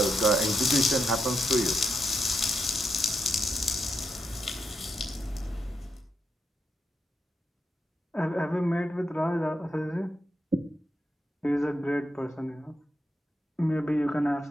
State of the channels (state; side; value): normal; both; correlation 0.83